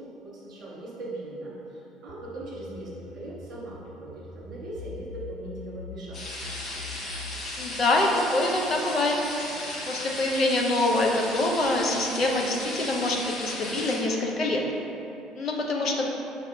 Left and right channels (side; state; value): both; normal; correlation 0.60